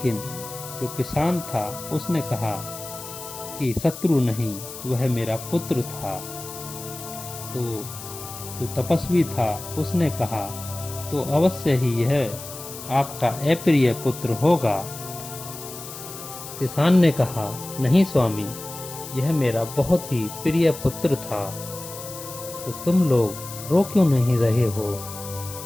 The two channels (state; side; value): noise; left; hiss, 12 dB below the sound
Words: जो किसान था उसने कहा कि शत्रु नहीं, वह मेरा पुत्र था। तो जो तपस्वी था उसने कहा तो अवश्य ही यह आपका अप्रिय पुत्र होगा। किसान ने कहा नहीं स्वामी, यह मेरा बहुत ही प्रिय पुत्र था। तो तुम लोग रो क्यों नहीं रहे हो?